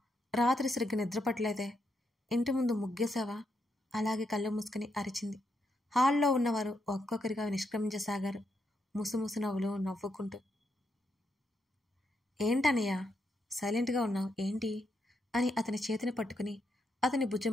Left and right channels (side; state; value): both; normal; correlation 0.81